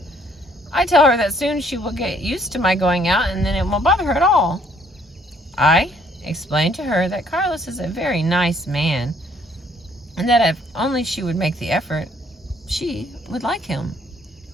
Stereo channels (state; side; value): normal; both; correlation 0.65